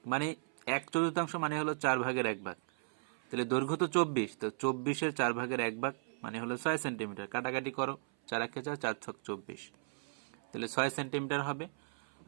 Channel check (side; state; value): left; silent; 54 dB below the other